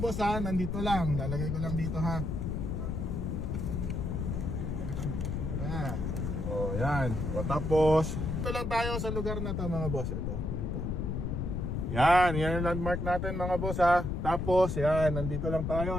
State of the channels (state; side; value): noise; left; rumble, 2 dB below the sound